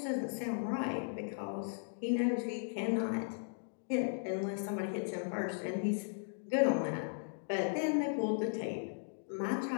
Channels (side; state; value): right; silent; digital silence